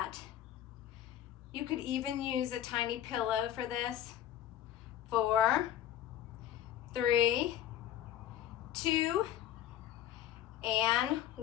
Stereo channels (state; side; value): quieter; right; 11.4 dB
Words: You could even use a tiny pillow for this. 4, 3, 2, and